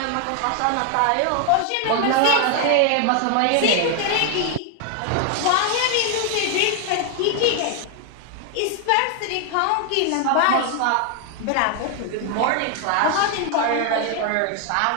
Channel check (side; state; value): both; different; correlation 0.00